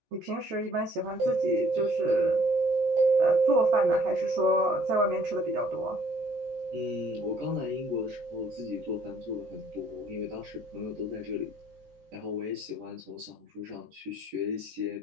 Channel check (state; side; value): late; left; 14 ms